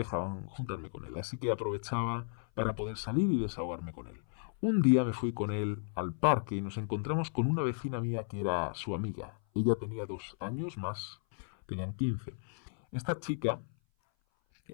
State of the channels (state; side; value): silent; right; 55 dB below the other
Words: juntarme con él. Así que aprovechaba para poder salir y desahogarme con él. Un día me fui con él al parque y nos encontramos con una vecina mía que era su amiga. Ella tenía 2 años más, tenían 15. Esta chica